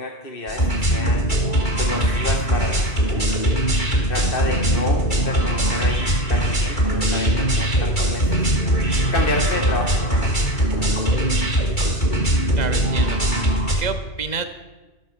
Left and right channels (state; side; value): late; right; 2.3 ms